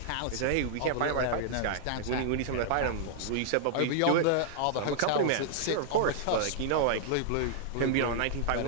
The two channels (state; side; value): different; both; correlation -0.01